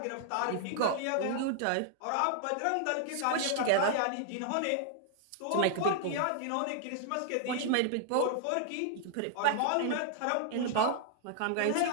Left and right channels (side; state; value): both; different; correlation -0.01